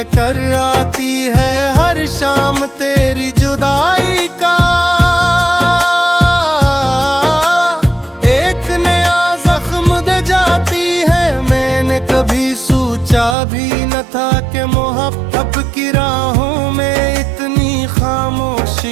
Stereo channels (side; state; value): left; drops out; at 13.4 s